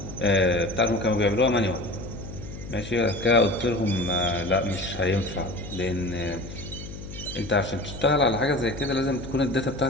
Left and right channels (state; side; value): noise; left; hum, 12 dB below the sound